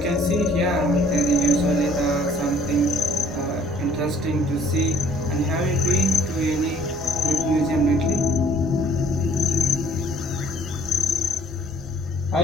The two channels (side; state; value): both; normal; correlation 0.57